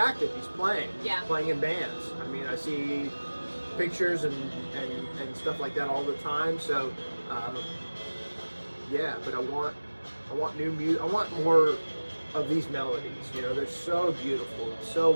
He's playing. Yeah. He's playing in bands. I mean, I see pictures and stuff like that all the time. So, yeah. But I want new music. I want more of these melodies. You know, they're so beautiful, so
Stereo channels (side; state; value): both; inverted; correlation -1.00